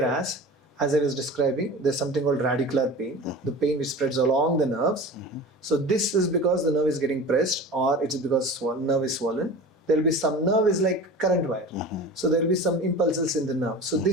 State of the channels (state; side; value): normal; both; correlation 0.35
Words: as I was describing, there's something called radicular pain, the pain which spreads along the nerves. So this is because the nerve is getting pressed, or it's because nerve is swollen. There will be some nerve is like current wire. So there will be some impulses in the nerve. So